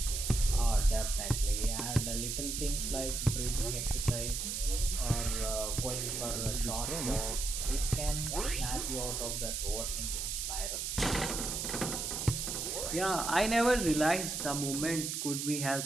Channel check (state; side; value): noise; right; hiss, 2 dB below the sound